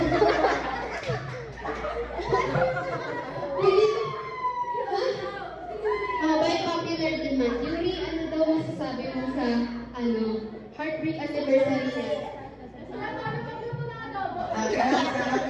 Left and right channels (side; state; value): both; identical; correlation 1.00